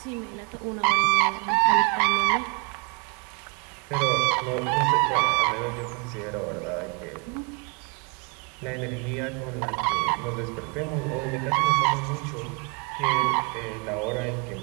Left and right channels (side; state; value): left; quieter; 33.1 dB